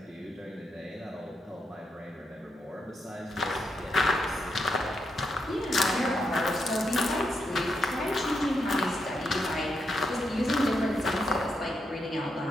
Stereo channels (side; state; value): both; normal; correlation 0.82